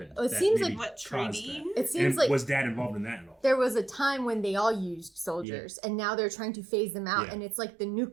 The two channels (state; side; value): drops out; left; at 5.5 s